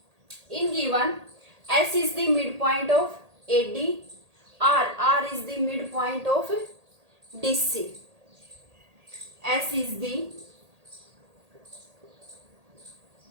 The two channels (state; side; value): late; left; 1.8 ms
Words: In given, S is the midpoint of AD, R is the midpoint of DC. S is the